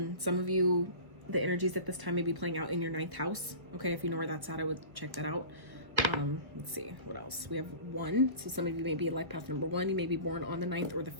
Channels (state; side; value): late; left; 1.5 ms